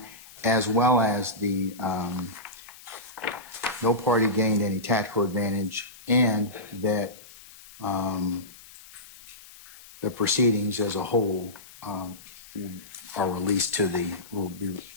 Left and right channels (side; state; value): left; noise; hiss, 20 dB below the sound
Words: as well as the no party gained any tactical advantage, and that the proceedings as a whole are released to will be